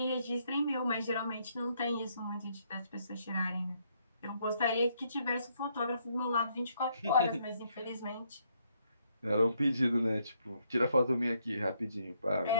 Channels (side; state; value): both; inverted; correlation -0.72